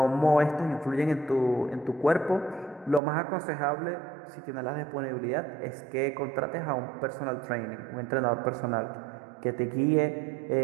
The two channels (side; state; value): left; drops out; at 3.0 s